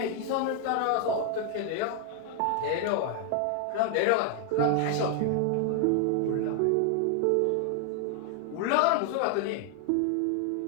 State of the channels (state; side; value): different; both; correlation 0.00